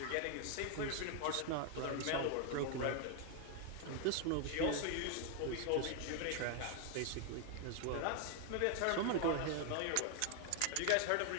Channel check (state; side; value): different; both; correlation 0.01